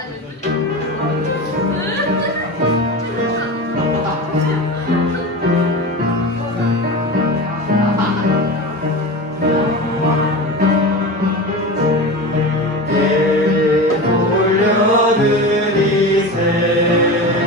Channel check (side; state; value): both; normal; correlation 0.28